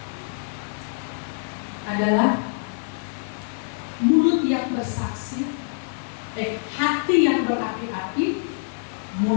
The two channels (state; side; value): silent; right; digital silence